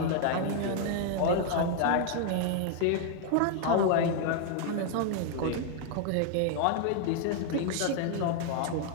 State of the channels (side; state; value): both; different; correlation 0.00